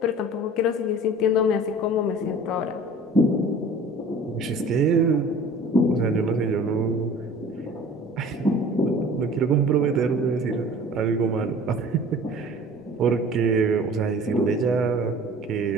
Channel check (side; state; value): both; normal; correlation 0.45